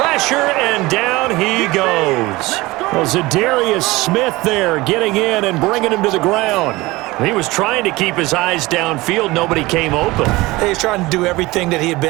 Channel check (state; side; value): quieter; left; 20.6 dB